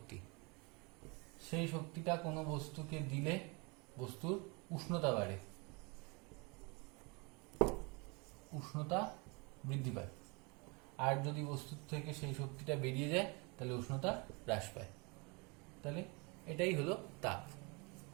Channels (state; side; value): quieter; left; 29.8 dB